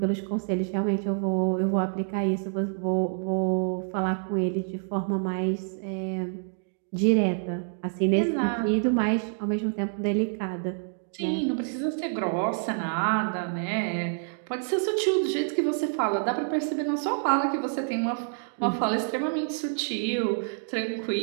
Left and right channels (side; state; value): left; silent; digital silence